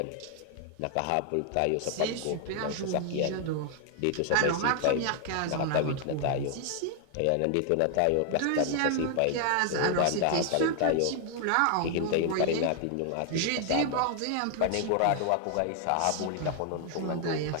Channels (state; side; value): different; both; correlation 0.00